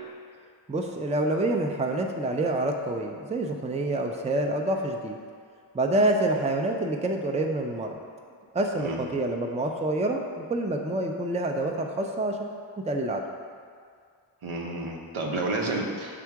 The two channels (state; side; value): normal; both; correlation 0.24